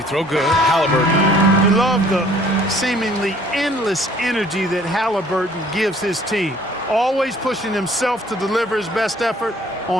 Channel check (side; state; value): both; normal; correlation 0.56